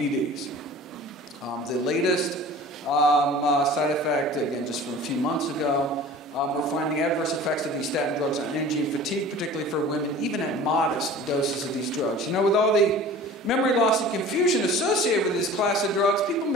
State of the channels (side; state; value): both; normal; correlation 0.42